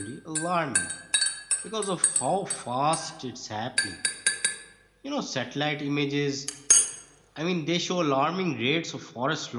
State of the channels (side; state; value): both; identical; correlation 1.00